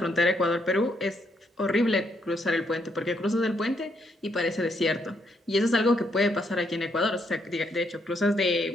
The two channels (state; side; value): normal; both; correlation 0.75